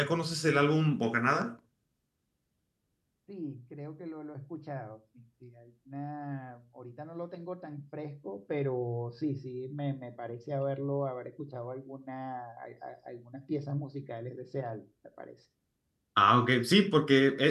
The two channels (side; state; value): both; identical; correlation 1.00